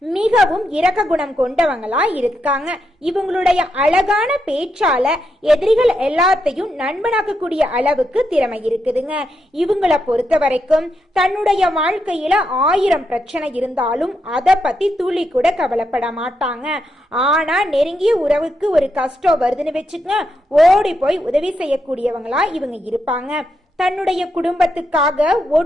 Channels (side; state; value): both; normal; correlation 0.82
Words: மிகவும் இரக்க குணம் கொண்டவங்களா இருக்காங்க. இவங்களுடைய அழகான பேச்சால எதிரிகள் எல்லாத்தையும் நண்பனாக்கக்கூடிய அளவுக்கு திறமை இருக்குதுங்க. இவங்களை பொறுத்த வரைக்கும் தன்னுடைய வாழ்க்கையில 1000 பிரச்சனை இருந்தாலும் அதை பத்தி துளி கூட கவலைப்பட மாட்டாங்க. ஆனா நெருங்கிய உறவுக்கு ஒரு கஷ்டம் வருதுன்னு வச்சுக்க ஓடி போய் உதவி செய்யக்கூடியவங்களா இவங்க இருப்பாங்க. தன்னுடைய குடும்பத்துக்காக